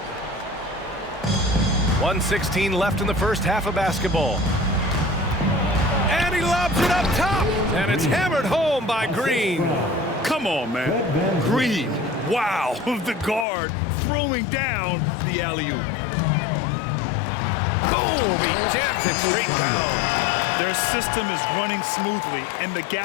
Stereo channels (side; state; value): right; drops out; at 13.5 s